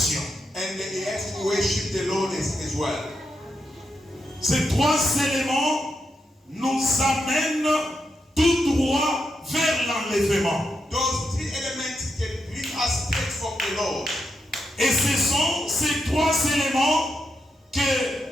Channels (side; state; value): both; normal; correlation 0.84